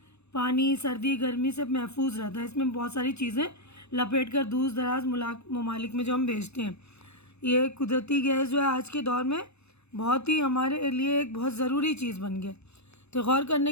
पानी सर्दी गर्मी से महफूज रहता है। इसमें बहुत सारी चीज़ें लपेट कर दूर दराज ममालिक में जो हम भेजते हैं। ये कुदरती गैस जो है आज के दौर में बहुत ही हमारे लिए एक बहुत ज़रूरी चीज़ बन गया। तो गौर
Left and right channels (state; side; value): late; right; 0.80 ms